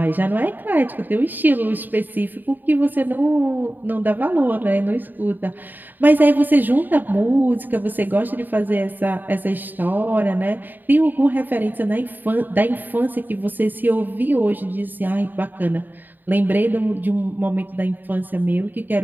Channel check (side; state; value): left; late; 0.089 ms